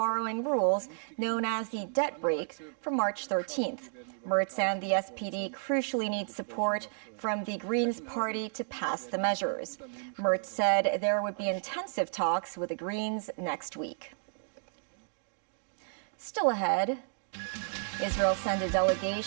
rules known as the debt brake from March 13th. Merz and the SPD crucially need support from the Greens party to pass the measures. Merz said there would be intensive talks with the Greens next week. Still ahead, Israel sent a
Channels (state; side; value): silent; left; digital silence